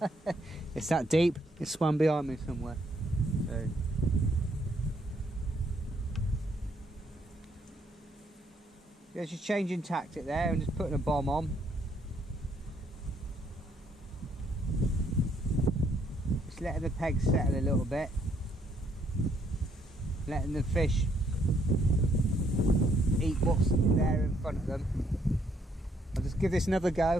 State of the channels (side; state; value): both; normal; correlation 0.70